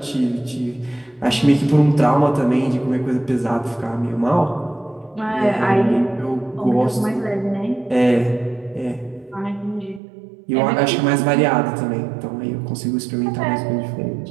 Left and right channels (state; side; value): drops out; left; at 10.0 s